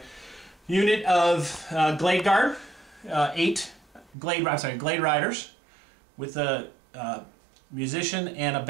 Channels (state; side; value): drops out; left; at 4.1 s